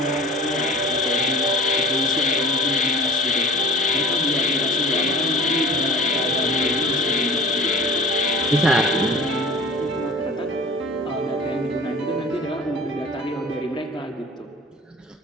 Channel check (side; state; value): both; normal; correlation 0.42